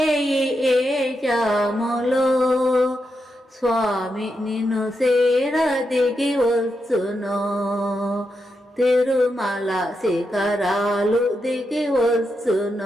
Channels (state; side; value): normal; both; correlation 0.85